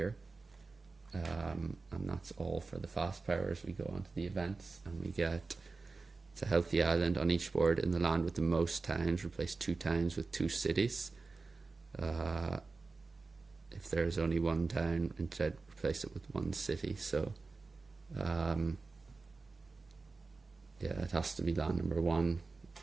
And that's all for the fast powers. We go on to the events, and we get, it's a healthy island on each board. In the land with the most towns, replace 2 towns with 2 cities. If there's only 1 town, instead replace it with 1 city. So yeah, it has to be land number 1.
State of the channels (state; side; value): quieter; left; 4.0 dB